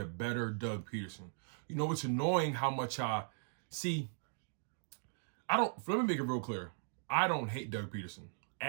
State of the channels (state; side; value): silent; left; digital silence